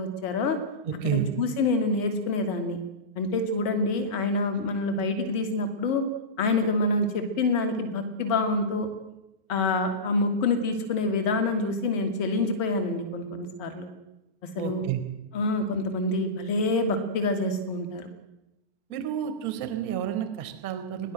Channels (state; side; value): late; right; 4.8 ms